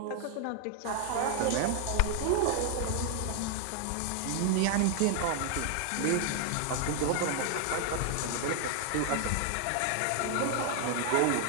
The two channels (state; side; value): different; both; correlation 0.00